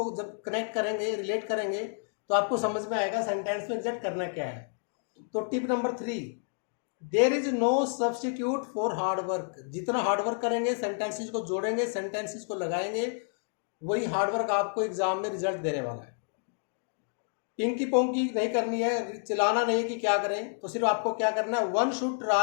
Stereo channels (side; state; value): right; silent; 58 dB below the other